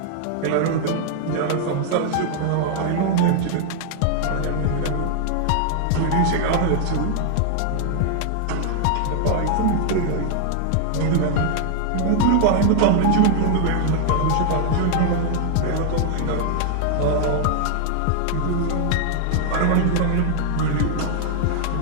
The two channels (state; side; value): different; both; correlation 0.00